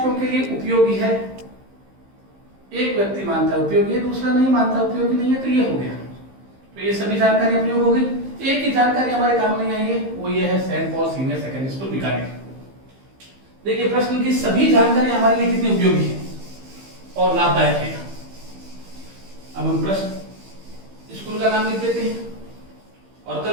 के लिए उपयोगी है? एक व्यक्ति मानता है उपयोगी है, दूसरा नहीं मानता उपयोगी नहीं है, तो ये हो गया। तो ये सभी जानकारी उपयोग हो गई। एक ही जानकारी हमारे काम नहीं आई है, वो ये है Saint Paul senior secondary school Bikaner. देखिए प्रश्न की सभी जानकारी हमारे लिए कितनी उपयोगी है और लाभदायक है। अब हम प्रश्न स्कूल का नाम लिख देते हैं और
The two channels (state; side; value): late; left; 15 ms